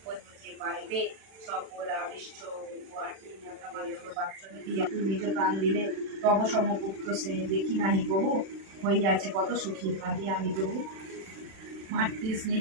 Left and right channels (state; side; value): late; left; 36 ms